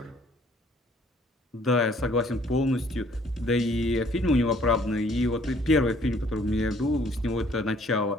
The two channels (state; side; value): normal; both; correlation 0.60